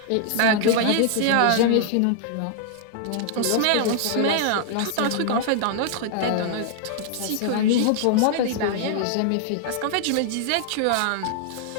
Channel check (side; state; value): both; different; correlation 0.00